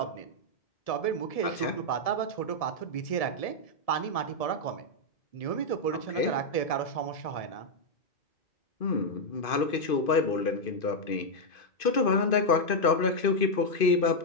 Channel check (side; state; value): right; late; 2.5 ms